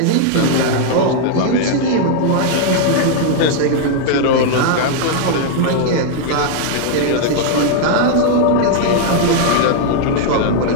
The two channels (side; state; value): both; different; correlation 0.00